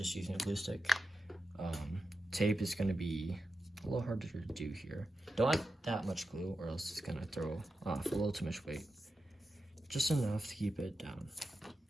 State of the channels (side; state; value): both; normal; correlation 0.90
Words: using a glue stick. Tape is going to be a little harder to do here. Don't add that much glue or else it's going to throw off a little too much weight. Just enough to keep it down.